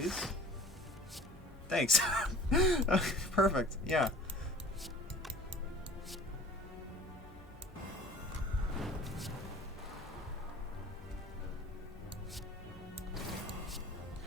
Thanks. Perfect, yeah.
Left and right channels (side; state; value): both; normal; correlation 0.47